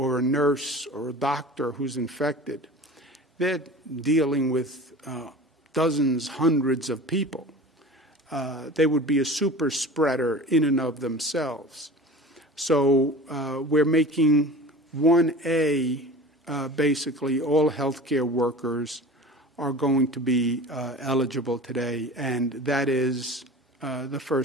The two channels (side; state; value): both; normal; correlation 0.38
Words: a nurse or a doctor who's infected, they're dealing with dozens, hundreds of people. They would be a super spreader in and of themselves. So we're making 1A, basically all healthcare workers are going to be eligible today, and that is the